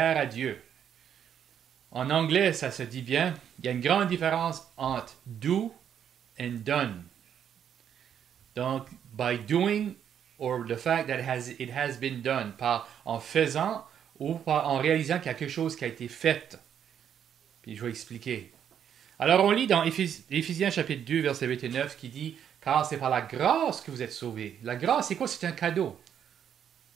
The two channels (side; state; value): left; quieter; 8.9 dB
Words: à Dieu. En anglais, ça se dit bien. Il y a une grande différence entre do and done. Donc, by doing or the fact that it has been done, par en faisant ou par en réalisant qu'il y a quelque chose qui a été fait. Puis je vais expliquer. Alors, on lit dans Éphésiens chapitre 2, verset 8 et 9 qui dit car c'est par la grâce que vous êtes sauvés. La grâce, c'est quoi? C'est un cadeau.